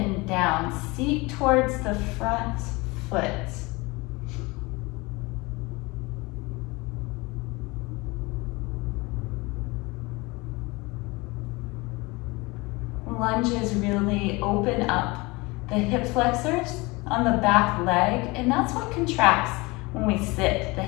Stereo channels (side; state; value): right; quieter; 24.4 dB